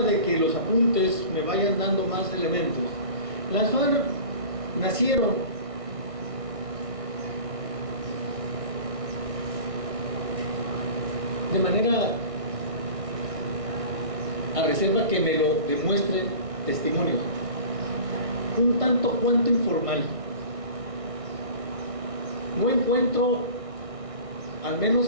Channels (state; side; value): late; left; 1.6 ms